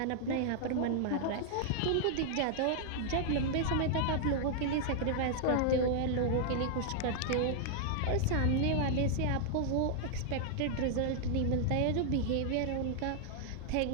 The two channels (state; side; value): different; both; correlation -0.01